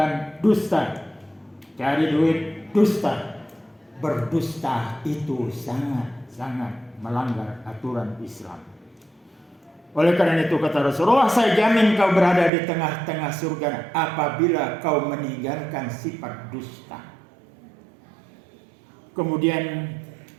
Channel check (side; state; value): left; drops out; at 12.5 s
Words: dusta, cari duit dusta. Berdusta itu sangat-sangat melanggar aturan Islam. Oleh karena itu kata Rasulullah, saya jamin kau berada di tengah-tengah surga apabila kau meninggalkan sifat dusta. Kemudian